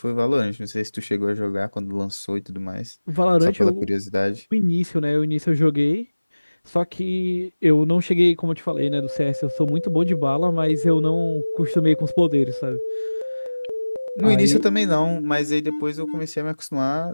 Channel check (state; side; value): inverted; both; correlation -1.00